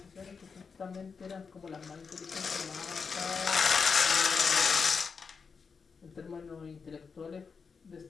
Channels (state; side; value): quieter; right; 5.4 dB